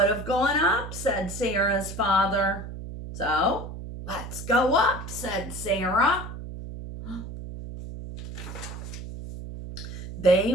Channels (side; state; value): right; noise; hum, 10 dB below the sound